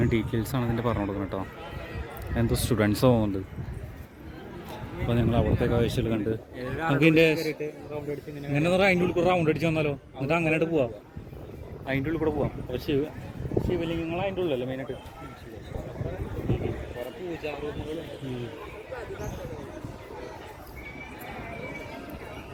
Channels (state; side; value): identical; both; correlation 1.00